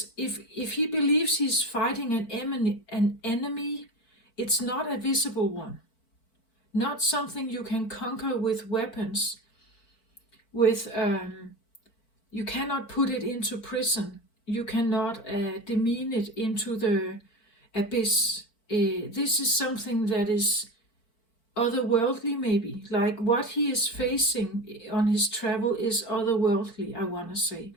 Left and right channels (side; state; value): right; late; 4.5 ms